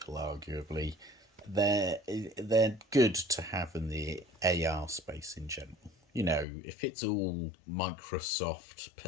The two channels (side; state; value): right; drops out; at 6.5 s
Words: arguably. They're good to have in the AR space in general. You know, if it's all Microsoft,